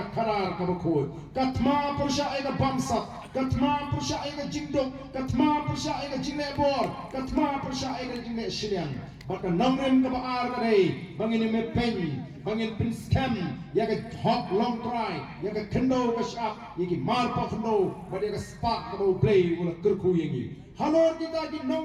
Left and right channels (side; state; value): both; identical; correlation 1.00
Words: karar ka bakoi katma pursha e ka bamsap katma pursha e ka jingdok katma pursha e ka jingne bor katma pursha e ka jingne shiliang ba ka nongrim ka baar ka dei bangin me pen bangin pin scam ya ka hot long try ya ka kendo ka shap ya ki mar pa kendo ba ya ka spark ka bo play wala kerku yengi halor kita ki